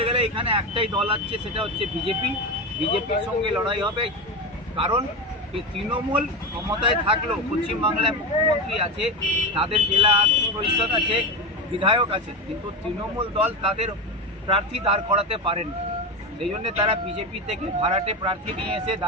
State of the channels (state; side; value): normal; both; correlation 0.19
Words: গেলে এখানে একটাই দল আছে, সেটা হচ্ছে বিজেপি। বিজেপির সঙ্গে লড়াই হবে, কারণ তৃণমূল ক্ষমতায় থাকলেও পশ্চিমবাংলায় মুখ্যমন্ত্রী আছে, তাদের জেলা পরিষদ আছে, বিধায়ক আছে, কিন্তু তৃণমূল দল তাদের প্রার্থী দাঁড় করাতে পারেন। সেই জন্য তারা বিজেপি থেকে ভাড়াটে প্রার্থী নিয়ে এসে